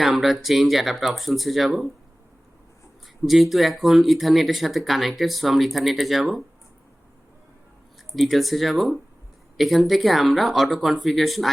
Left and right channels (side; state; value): both; normal; correlation 0.98